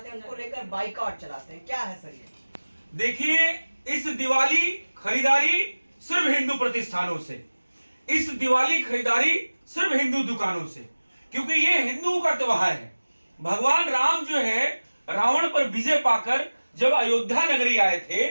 हैं उनको लेकर बाइकाट चलाते हैं, क्या है सर ये? देखिए, इस दिवाली खरीदारी सिर्फ हिंदू प्रतिष्ठानों से, इस दिवाली खरीदारी सिर्फ हिंदू दुकानों से, क्योंकि ये हिंदुओं का त्योहार है। भगवान राम जो है रावण पर विजय पाकर जब अयोध्या नगरी आए थे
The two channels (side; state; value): both; inverted; correlation -1.00